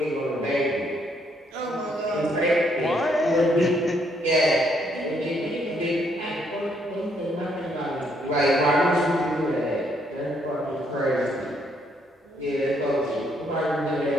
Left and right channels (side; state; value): both; normal; correlation 0.71